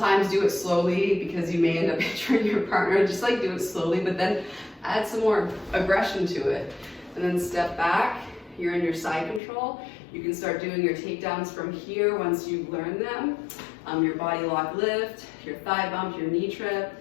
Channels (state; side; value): drops out; right; at 9.4 s